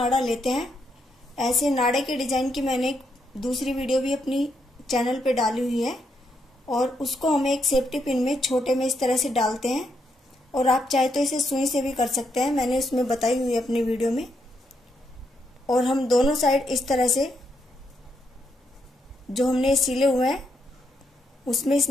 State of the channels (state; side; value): normal; both; correlation 0.79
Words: लेते हैं। ऐसे नाड़े के डिजाइन की मैंने एक दूसरी वीडियो भी अपनी चैनल पे डाली हुई है। और उसको हम एक सेफ्टी पिन में छोटे में इस तरह से डालते हैं। और आप चाहे तो इसे सुई से भी कर सकते हैं, मैंने उसमें बताई हुई है अपनी वीडियो में। और हम दोनों साइड इस तरह से जो हमने सिले हुए हैं उसमें इस